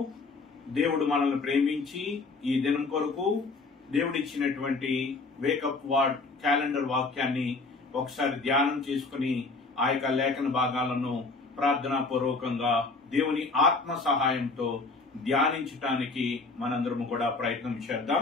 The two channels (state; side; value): quieter; right; 3.8 dB